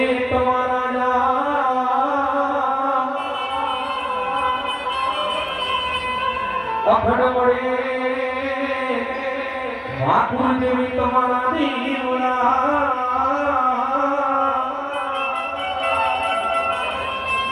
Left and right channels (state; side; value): identical; both; correlation 1.00